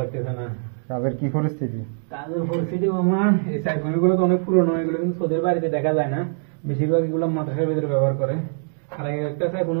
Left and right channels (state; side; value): silent; left; digital silence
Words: না। কাজের কি পরিস্থিতি? কাজের পরিস্থিতি মামা, এই সাইফোনগুলো তো অনেক পুরনো, এগুলো কিন্তু সোদের বাড়িতে দেখা যায় না, বেশিরভাগ এগুলো মাদ্রাসার ভিতরে ব্যবহার করে। আর একটা